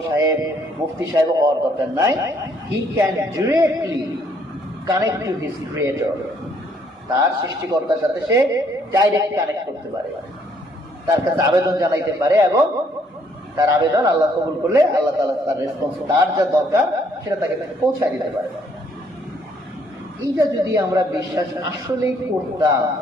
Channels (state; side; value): normal; both; correlation 0.67